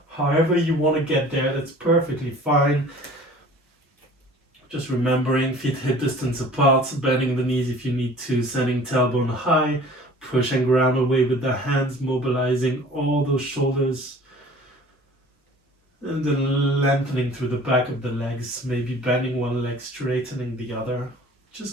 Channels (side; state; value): both; normal; correlation 0.47